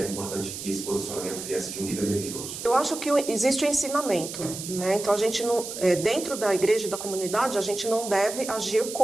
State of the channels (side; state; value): right; noise; hiss, 8 dB below the sound